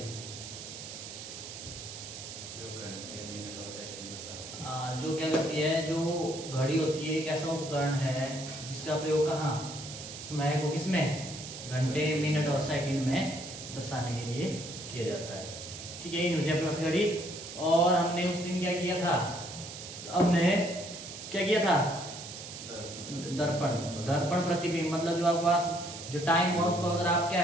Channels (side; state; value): right; noise; hiss, 11 dB below the sound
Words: जो क्या करती है, जो घड़ी होती है एक ऐसा उपकरण है जिसका प्रयोग कहाँ समय को किसमें घंटे मिनट और सेकंड में दर्शाने के लिए किया जाता है। ठीक है, ये न्यूज अपने पास घड़ी। और हमने उस दिन क्या किया था? हमने क्या किया था? दर्पण दर्पण प्रतिबिंब, मतलब जो आपके पास जो टाइम हुआ उसको अगर आप क्या